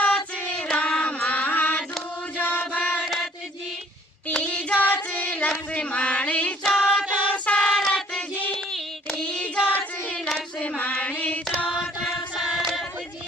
रामा दूजो भरत जी तीजोच लक्ष्मण चौथो शरत जी तीजोच लक्ष्मण चौथो शरत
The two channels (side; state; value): both; normal; correlation 0.58